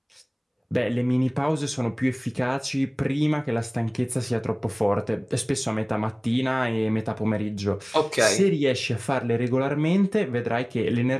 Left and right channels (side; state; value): both; identical; correlation 1.00